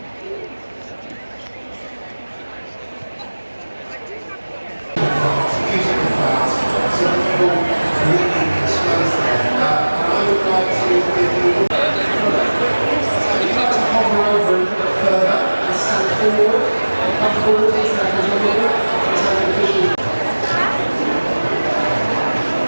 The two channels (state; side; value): inverted; both; correlation -1.00